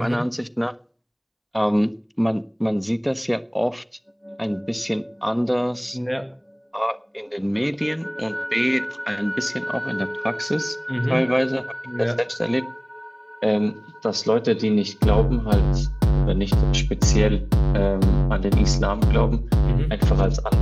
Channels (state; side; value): identical; both; correlation 1.00